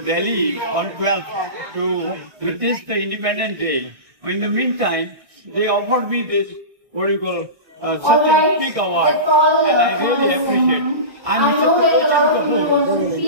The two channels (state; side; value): late; left; 1.6 ms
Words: Delhi on 12th to witness the Independence Day. In the meantime, they offered me this, what do you call, such a big award, and I really appreciate. I'm Mr. Talochan Kapoor,